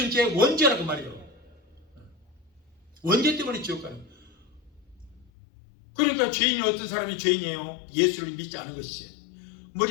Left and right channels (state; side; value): drops out; right; at 5.2 s